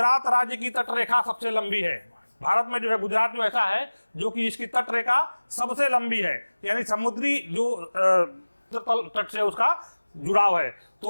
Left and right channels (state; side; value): inverted; both; correlation -1.00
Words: राज्य की तटरेखा सबसे लंबी है। भारत में जो है गुजरात जो ऐसा है जो कि इसकी तटरेखा सबसे लंबी है, यानी समुद्री जो तट से उसका जुड़ाव है।